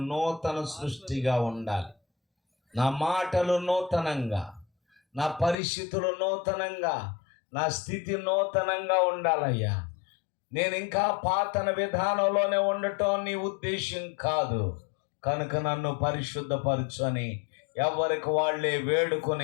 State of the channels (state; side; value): drops out; right; at 5.6 s